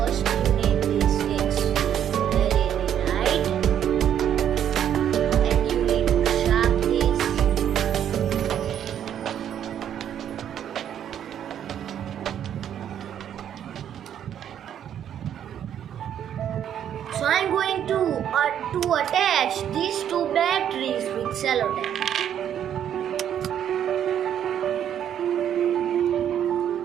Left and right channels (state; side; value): quieter; left; 9.7 dB